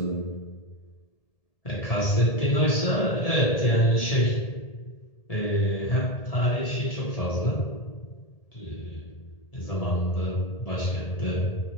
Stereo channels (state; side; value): late; right; 1.7 ms